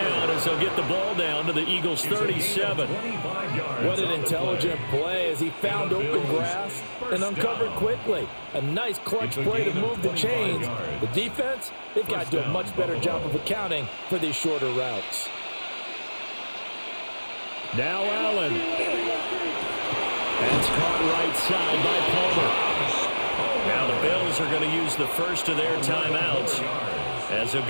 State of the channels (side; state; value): both; inverted; correlation -1.00